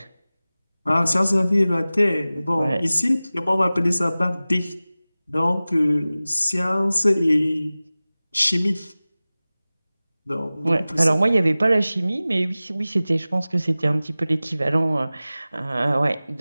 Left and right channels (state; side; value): inverted; both; correlation -0.97